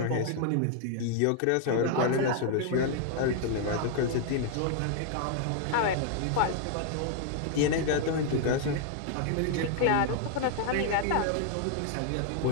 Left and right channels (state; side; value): different; both; correlation 0.00